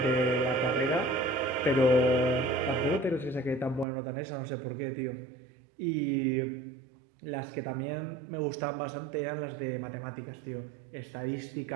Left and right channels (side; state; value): left; drops out; at 3.9 s